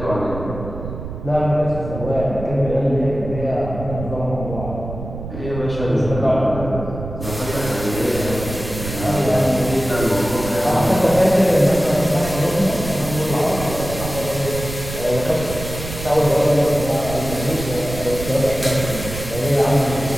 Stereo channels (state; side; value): noise; right; rumble, 9 dB below the sound